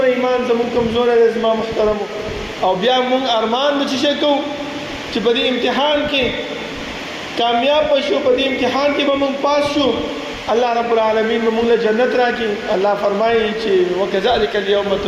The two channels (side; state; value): both; identical; correlation 1.00